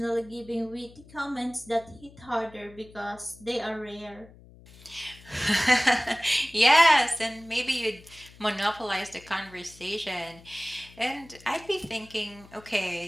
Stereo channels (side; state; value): left; noise; hum, 22 dB below the sound